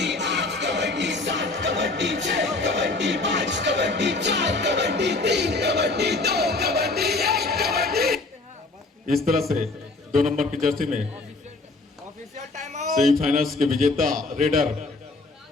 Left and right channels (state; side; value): quieter; right; 3.4 dB